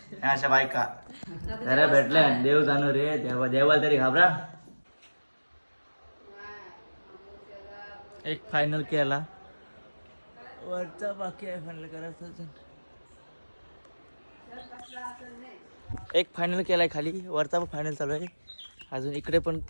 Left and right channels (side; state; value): both; inverted; correlation -1.00